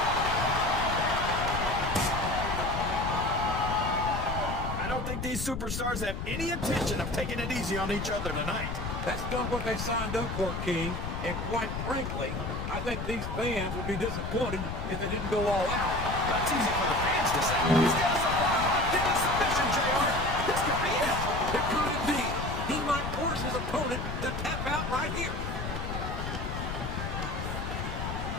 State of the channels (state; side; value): noise; left; rumble, 4 dB below the sound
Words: I don't think these superstars have any intention of taking it easy on each other tonight. That's not what they signed up for, King. And quite frankly, I think these fans would be disappointed if they didn't go all out. That's easy for the fans to say. He's got us a hit a submission, JR. This could be it. It could indeed. He might force his opponent to tap out right here.